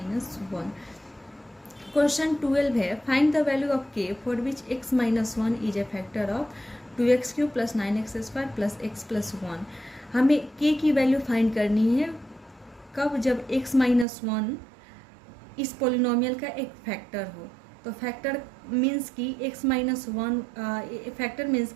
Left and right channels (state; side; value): drops out; left; at 14.1 s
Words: 1। Question 12 है, find the value of k for which x minus 1 is a factor of 2x³ plus 9x² plus x plus 1। हमें k की value find करनी है कब, जब x minus 1 इस polynomial का एक फैक्टर हो। तो फैक्टर मीन्स कि x माइनस 1, फैक्टर मीन्स